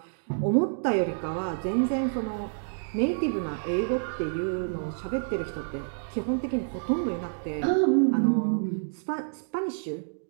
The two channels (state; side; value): silent; left; digital silence